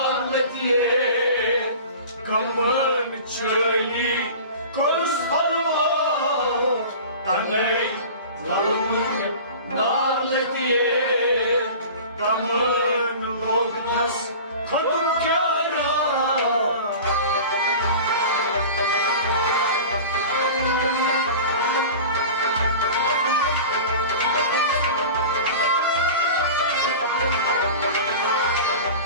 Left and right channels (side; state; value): both; inverted; correlation -0.36